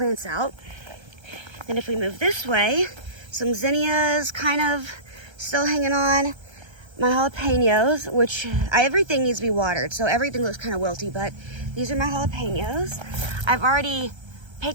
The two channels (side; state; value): left; late; 1.3 ms